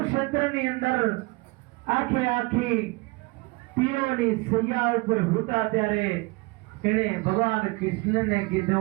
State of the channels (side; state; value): left; quieter; 24.6 dB